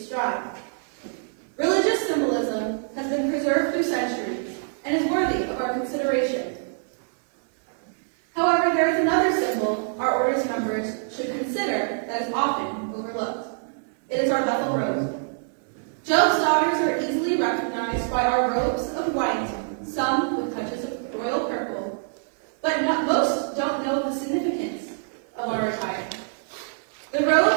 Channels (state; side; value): silent; left; digital silence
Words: strive. Religious symbolism has been preserved through centuries and is worthy of our consideration. However, there is another symbol our order's members should consider that is often overlooked. It is our Bethel robe. Job's daughters are easily recognized by our robes of white, some with touches of royal purple, but most don't know the significance of our attire. The robe